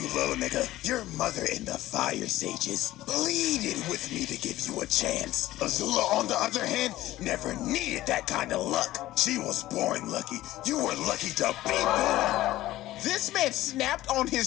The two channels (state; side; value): quieter; right; 15.7 dB